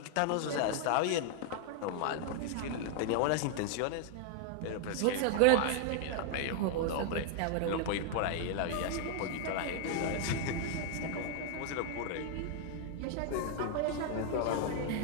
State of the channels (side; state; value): both; different; correlation 0.00